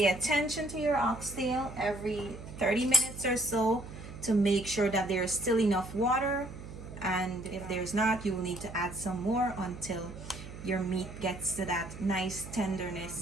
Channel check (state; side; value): noise; right; hum, 12 dB below the sound